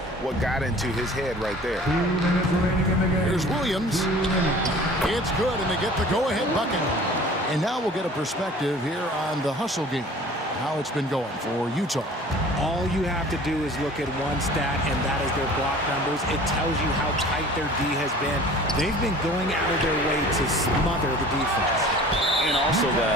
what got into his head right there. Here's Williams. It's good, and they get the go-ahead bucket. And now we'll get a perspective here on the hustle game, how it's been going for Utah. All you have to do is look at one stat, and that is their block numbers. It tells you how tight their D has been. They've been going out of their way to smother the defense. And also,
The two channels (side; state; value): both; normal; correlation 0.46